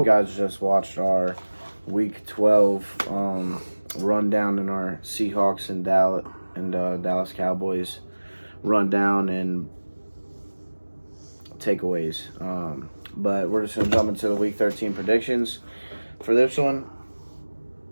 guys just watched our Week 12 rundown in our Seahawks and Dallas Cowboys rundown and takeaways. But we're just going to jump into the Week 13 predictions for this one.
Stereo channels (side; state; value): both; inverted; correlation -1.00